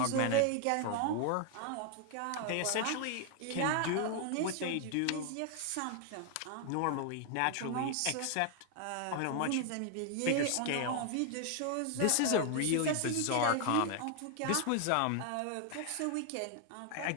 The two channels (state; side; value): different; both; correlation 0.00